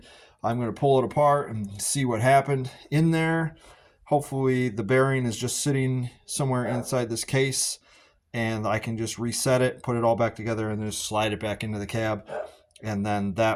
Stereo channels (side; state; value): both; identical; correlation 1.00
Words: I'm going to pull it apart and see what happened in there. Hopefully the bearing is just sitting somewhere inside this case and I can just reset it, put it all back together, and just slide it back into the cab. And then